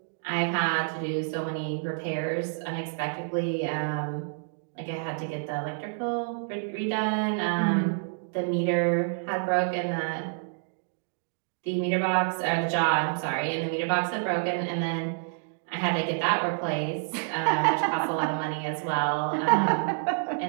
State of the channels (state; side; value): silent; left; digital silence